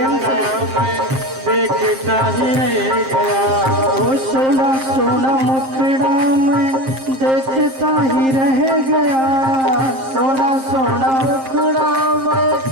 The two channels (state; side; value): late; left; 7.6 ms